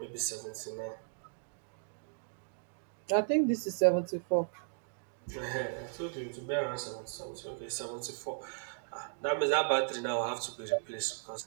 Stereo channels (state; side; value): silent; left; digital silence